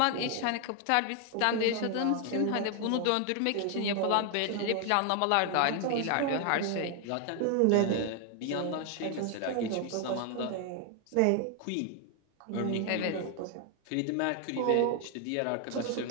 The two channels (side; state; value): both; different; correlation 0.00